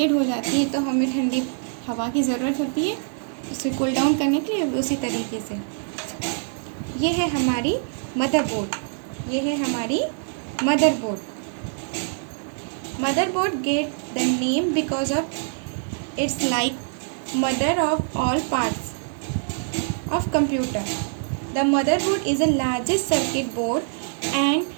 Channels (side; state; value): left; silent; digital silence